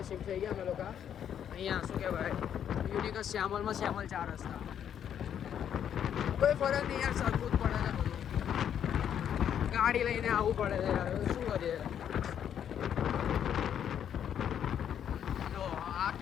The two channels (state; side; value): quieter; right; 9.2 dB